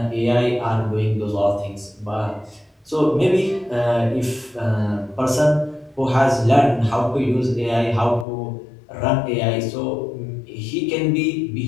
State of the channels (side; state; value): right; drops out; at 8.2 s